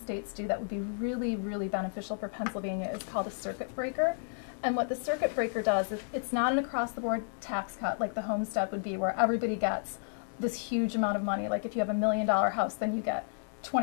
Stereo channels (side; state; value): right; silent; digital silence